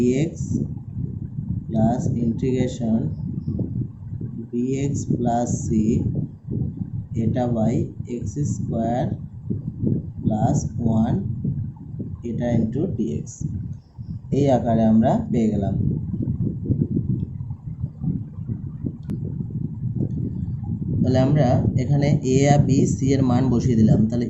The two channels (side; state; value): both; identical; correlation 1.00